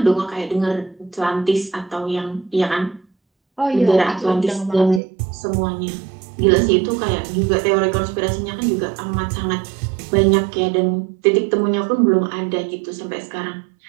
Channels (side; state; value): left; drops out; at 5.0 s